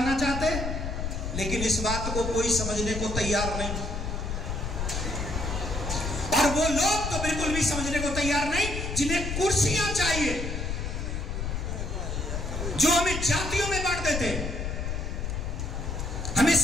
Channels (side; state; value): left; noise; rumble, 3 dB below the sound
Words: चाहते? लेकिन इस बात को कोई समझने को तैयार नहीं, और वो लोग तो बिल्कुल भी समझने को तैयार नहीं जिन्हें कुर्सियां चाहिए, जो हमें जातियों में बांट देते, हमें